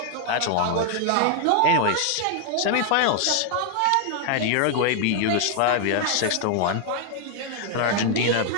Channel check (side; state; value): both; different; correlation 0.00